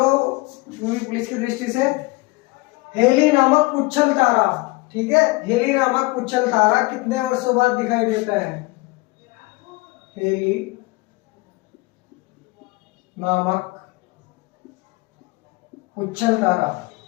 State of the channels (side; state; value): right; quieter; 23.6 dB